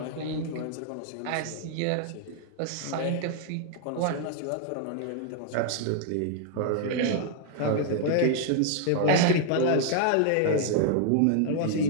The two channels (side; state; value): both; different; correlation 0.00